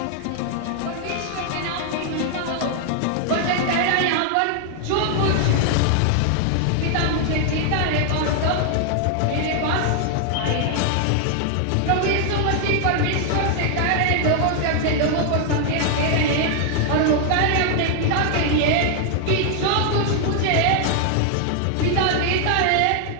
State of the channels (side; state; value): both; different; correlation 0.00